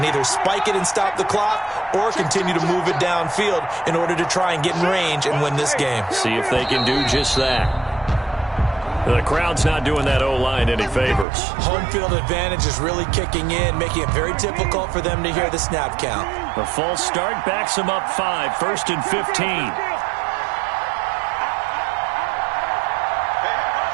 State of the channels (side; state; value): left; drops out; at 11.2 s